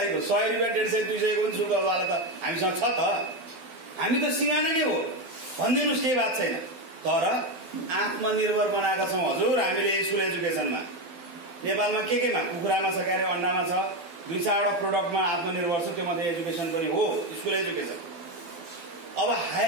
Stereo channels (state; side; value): late; left; 12 ms